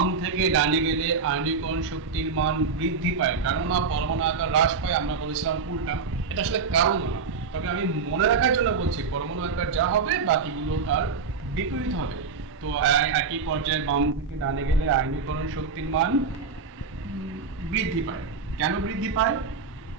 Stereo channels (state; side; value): quieter; left; 5.1 dB